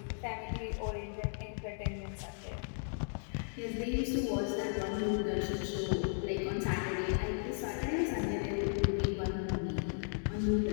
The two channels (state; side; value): silent; right; digital silence